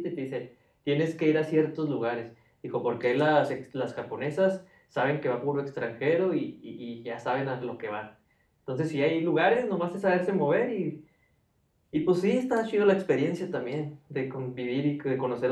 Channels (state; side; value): identical; both; correlation 1.00